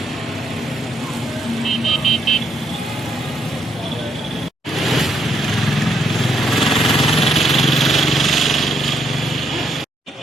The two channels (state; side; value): normal; both; correlation 0.75